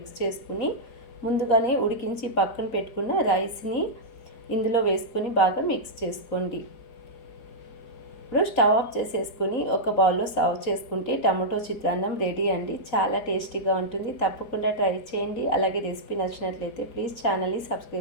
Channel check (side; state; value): right; late; 4.2 ms